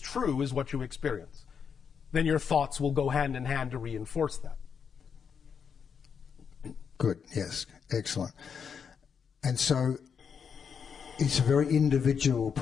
true is what you experience. Then your thoughts will go hand in hand to reinforce that. Good, yes, excellent. And so it's a very individual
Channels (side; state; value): right; quieter; 6.7 dB